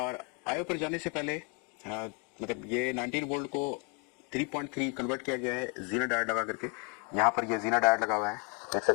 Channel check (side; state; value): right; quieter; 34.6 dB